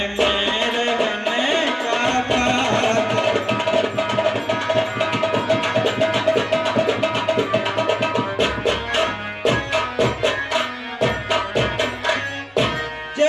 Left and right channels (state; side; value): identical; both; correlation 1.00